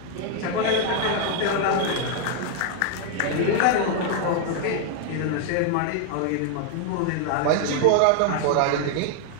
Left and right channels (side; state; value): both; different; correlation 0.00